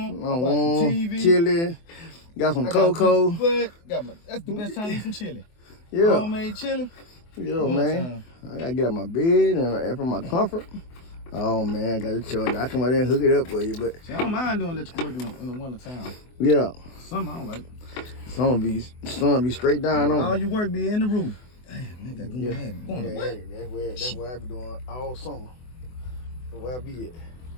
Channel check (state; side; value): late; right; 24 ms